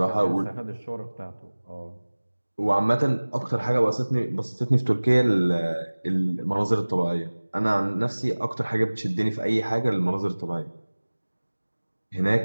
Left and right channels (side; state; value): both; inverted; correlation -1.00